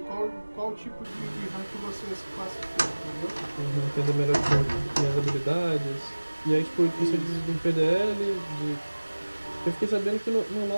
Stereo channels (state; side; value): inverted; both; correlation -1.00